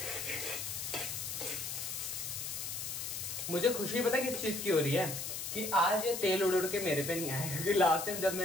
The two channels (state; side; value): noise; left; hiss, 5 dB below the sound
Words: मुझे खुशी पता है किस चीज की हो रही है कि आज ये तेल उड़ उड़ के मेरे पे नहीं आया, क्योंकि लास्ट टाइम जब